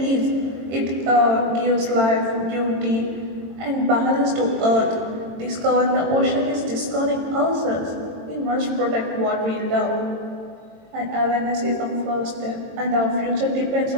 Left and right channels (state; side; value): late; left; 22 ms